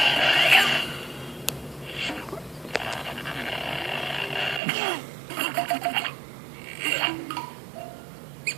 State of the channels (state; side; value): drops out; left; at 4.6 s